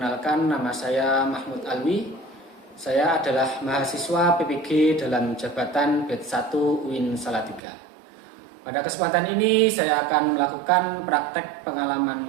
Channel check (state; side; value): drops out; left; at 7.6 s